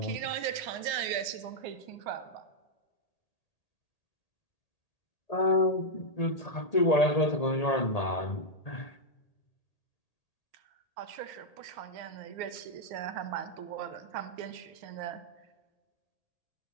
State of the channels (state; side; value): late; right; 1.8 ms